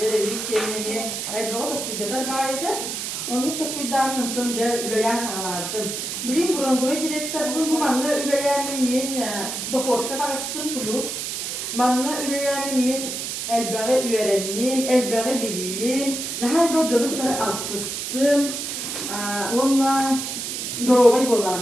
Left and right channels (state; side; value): noise; right; hiss, 4 dB below the sound